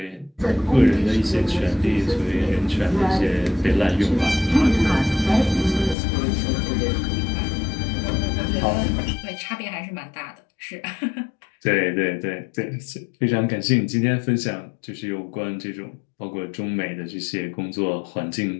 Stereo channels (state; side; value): drops out; right; at 6.0 s